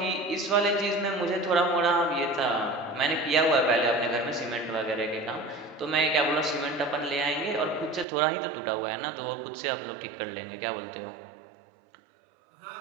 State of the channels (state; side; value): drops out; left; at 8.1 s